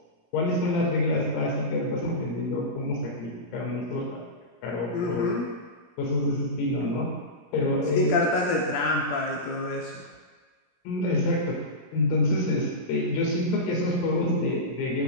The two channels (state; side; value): late; right; 17 ms